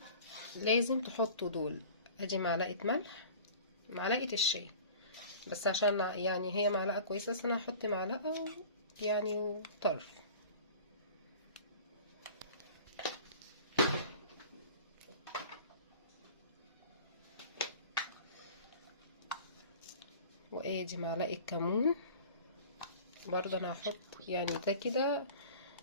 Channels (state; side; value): inverted; both; correlation -0.42